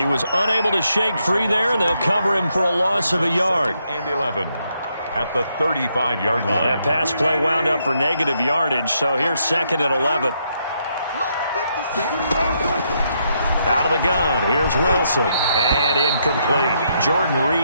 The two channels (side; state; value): both; inverted; correlation -0.77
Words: was unable to shake free there, and they'll cover him for a loss of a yard. And 11 at the 35-yard line. That pass play wound up for negative yardage, so here's 2nd and 11. Out of the gun, here's Wilson, and incomplete. Jordan